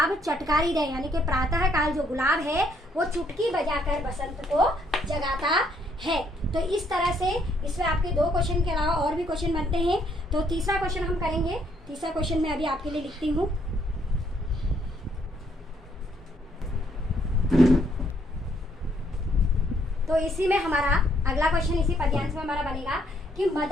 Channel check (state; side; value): normal; both; correlation 0.69